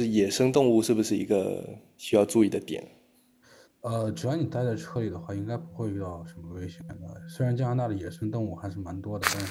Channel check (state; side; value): identical; both; correlation 1.00